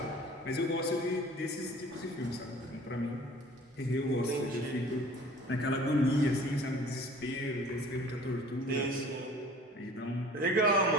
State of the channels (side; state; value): both; normal; correlation 0.48